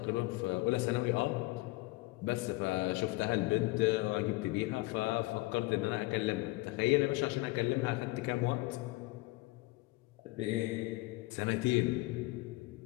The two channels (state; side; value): quieter; right; 21.2 dB